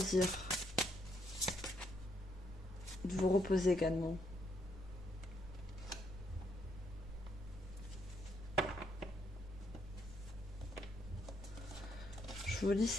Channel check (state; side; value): normal; both; correlation 0.75